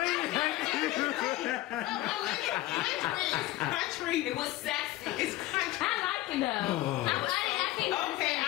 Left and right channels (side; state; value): right; quieter; 16.6 dB